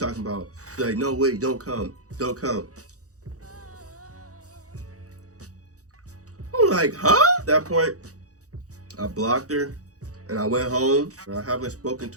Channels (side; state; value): left; late; 0.66 ms